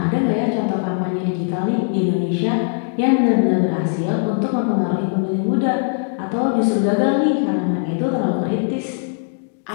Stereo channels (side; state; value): right; silent; 66 dB below the other